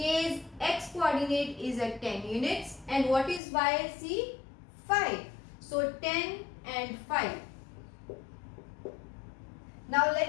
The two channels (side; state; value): right; drops out; at 3.4 s